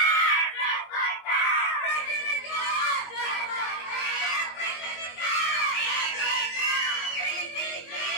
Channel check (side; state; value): right; late; 21 ms